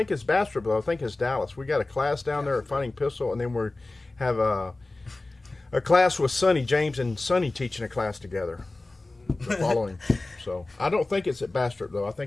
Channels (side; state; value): right; quieter; 3.0 dB